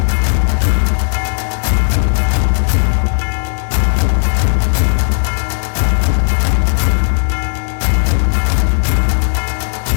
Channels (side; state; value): right; silent; digital silence